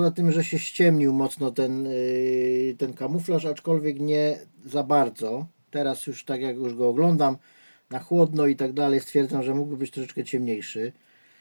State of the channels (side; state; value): both; inverted; correlation -1.00